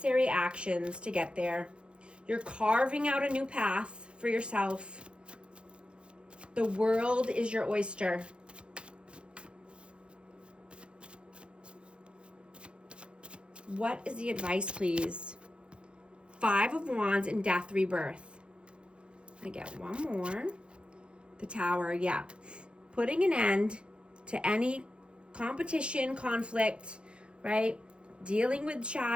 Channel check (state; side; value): late; left; 0.056 ms